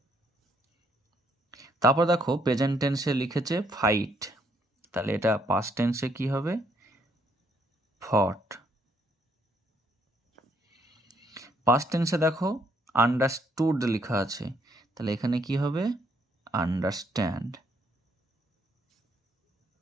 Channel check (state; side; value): normal; both; correlation 0.70